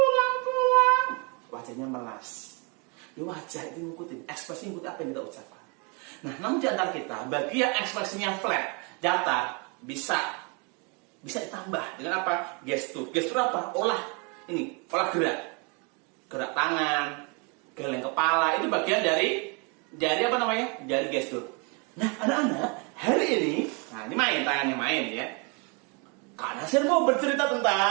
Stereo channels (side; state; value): left; quieter; 32.5 dB